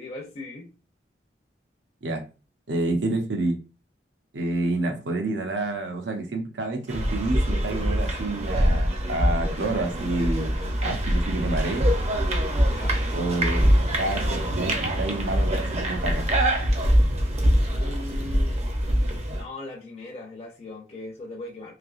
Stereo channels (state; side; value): normal; both; correlation 0.75